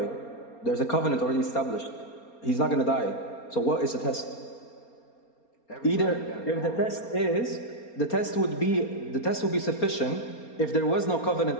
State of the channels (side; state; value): right; late; 4.3 ms